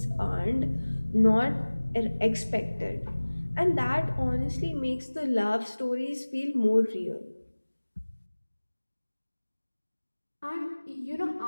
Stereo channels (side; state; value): both; inverted; correlation -1.00